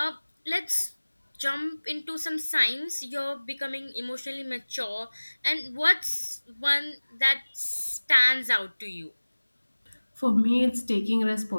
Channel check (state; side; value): inverted; both; correlation -1.00